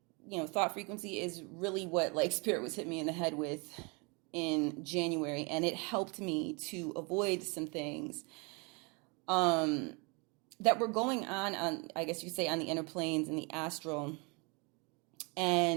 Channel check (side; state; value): left; quieter; 30.9 dB